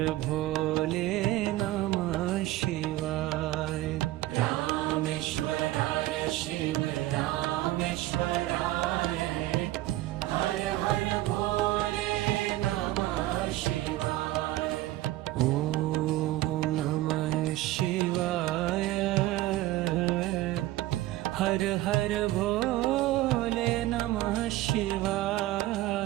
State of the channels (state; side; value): quieter; left; 16.3 dB